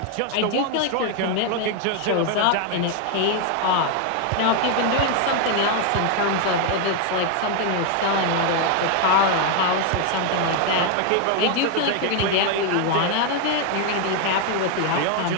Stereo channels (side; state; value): both; different; correlation 0.01